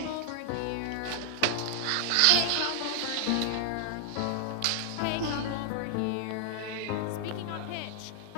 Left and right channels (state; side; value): different; both; correlation 0.00